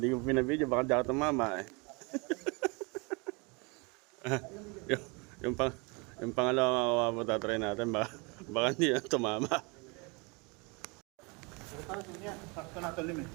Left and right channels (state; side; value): quieter; left; 29.6 dB